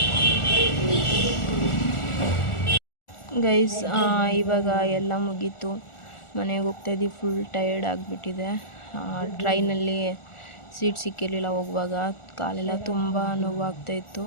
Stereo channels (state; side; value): late; right; 1.4 ms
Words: ಗೈಸ್. ಇವಾಗ ಎಲ್ಲ ಮುಗೀತು, ಮನೆಗೆ ಹೋಗ್ತಾಯಿದ್ದೀವಿ. ಫುಲ್ ಟಯರ್ಡ್ ಆಗಿಬಿಟ್ಟಿದೆ. ಟ್ರೈನಲ್ಲಿ ಸೀಟ್ ಸಿಕ್ಕಿರಲಿಲ್ಲ ಹೋಗುವಾಗ, ಕಾಲೆಲ್ಲ ತುಂಬ ನೋವಾಗ್ತಾಯಿತ್ತು.